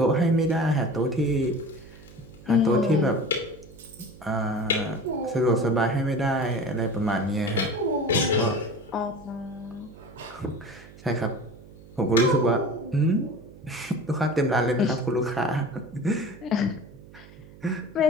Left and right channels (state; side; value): noise; right; hum, 20 dB below the sound